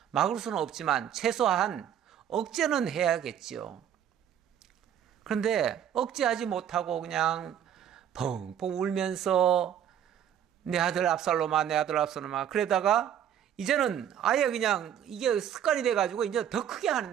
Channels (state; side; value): quieter; left; 9.7 dB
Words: 막을 수는 없지만 최소한 억제는 해야겠죠. 그런데 억제하지 못하고 그냥 펑펑 울면서 내 아들 압살롬아 내 아들 압살롬아 그러다가 이제는 아예 그냥 이게 습관이 돼가지고 이제 더 크게